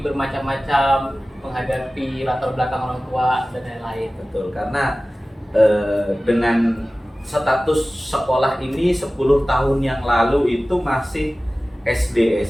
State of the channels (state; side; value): normal; both; correlation 0.97